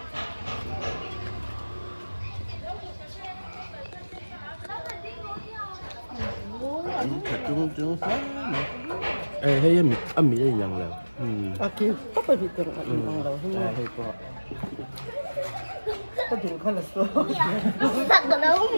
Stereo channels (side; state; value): both; inverted; correlation -1.00